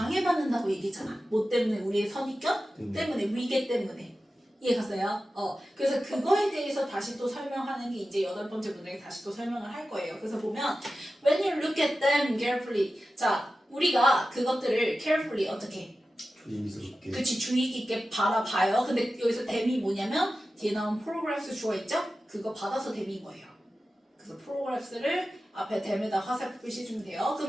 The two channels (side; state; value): both; normal; correlation 0.94